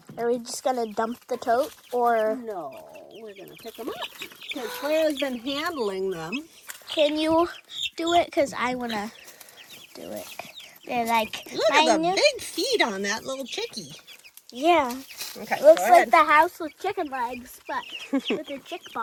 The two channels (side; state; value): both; identical; correlation 1.00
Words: Are we just gonna dump the tote, or No, we're gonna pick them up because Clara's been handling them. can you do it? Because I wanna do it. They're like, Look at the big feet on that little chickie. Yeah. Okay, Looks go like ahead. the house with chicken legs, but with a chick